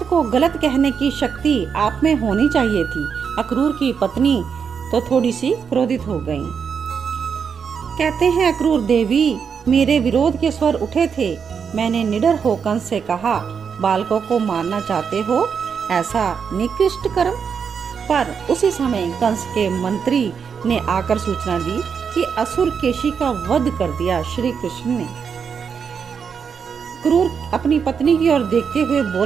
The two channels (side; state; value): left; quieter; 6.6 dB